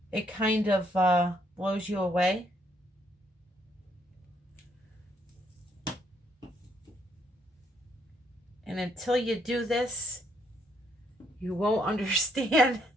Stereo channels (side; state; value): both; normal; correlation 0.71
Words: it kind of blows you away. And until you do this, you won't understand